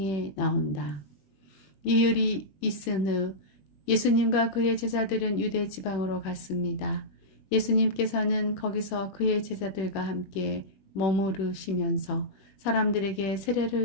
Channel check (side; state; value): right; late; 21 ms